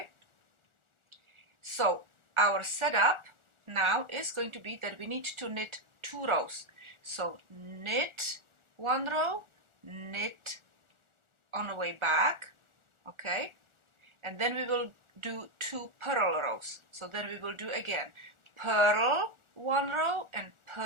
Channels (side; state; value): left; late; 1.4 ms